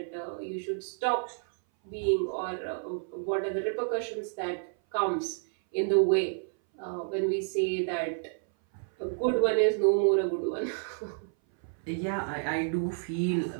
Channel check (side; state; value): left; silent; 58 dB below the other